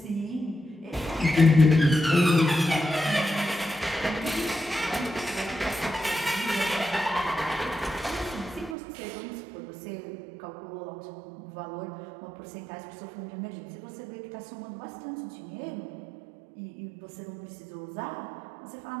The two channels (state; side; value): drops out; left; at 8.8 s